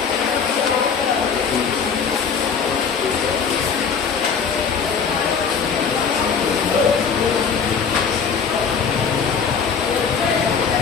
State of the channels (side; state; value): right; quieter; 6.1 dB